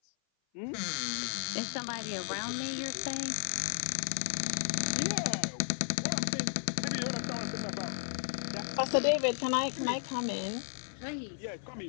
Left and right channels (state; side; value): silent; right; 55 dB below the other